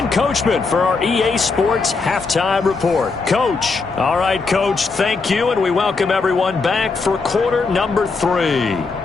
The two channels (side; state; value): right; quieter; 4.3 dB